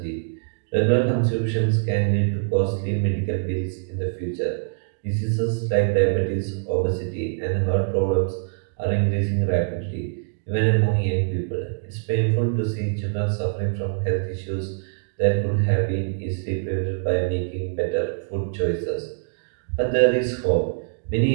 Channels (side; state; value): left; silent; digital silence